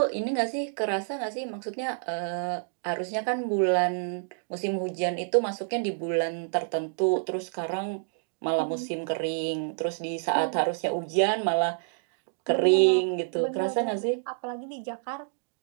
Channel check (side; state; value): left; silent; digital silence